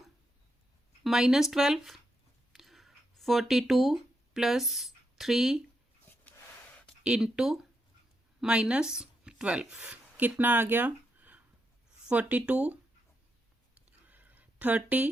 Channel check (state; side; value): normal; both; correlation 0.82